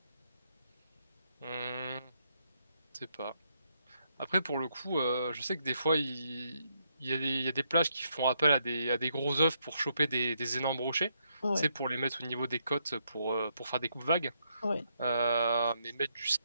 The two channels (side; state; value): both; inverted; correlation -0.77